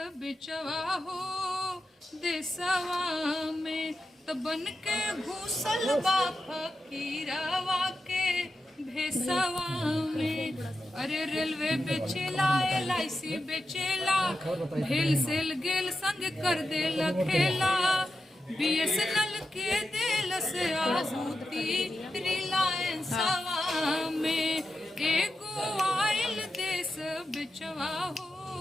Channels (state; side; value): normal; both; correlation 0.89